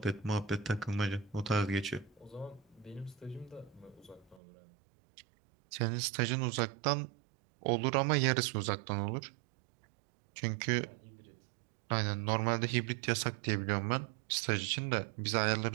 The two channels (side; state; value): left; drops out; at 4.4 s